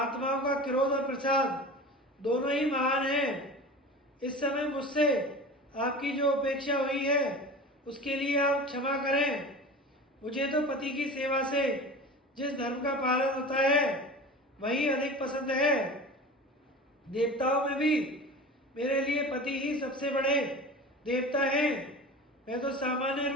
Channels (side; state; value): both; normal; correlation 0.34